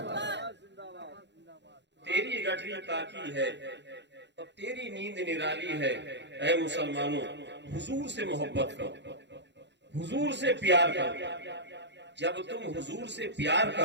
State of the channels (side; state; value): left; late; 0.51 ms